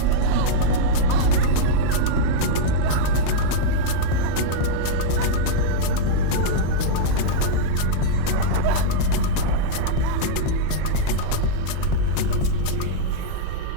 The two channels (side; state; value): both; different; correlation -0.02